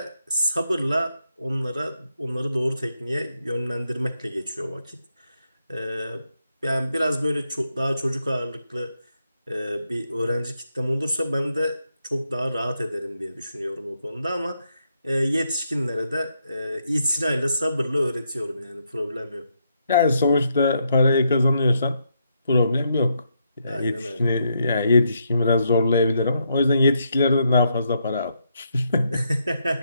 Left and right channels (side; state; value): both; inverted; correlation -0.79